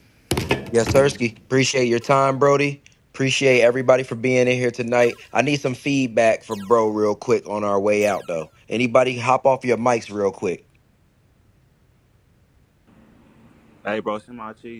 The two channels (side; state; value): both; identical; correlation 1.00